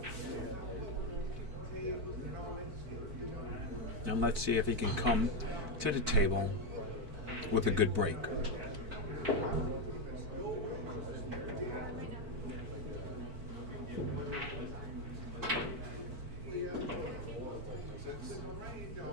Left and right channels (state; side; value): late; left; 4.5 ms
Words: And let's see if he can come to the table with a good break.